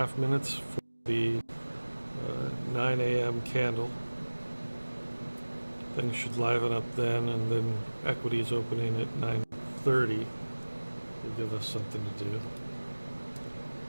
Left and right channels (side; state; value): both; inverted; correlation -1.00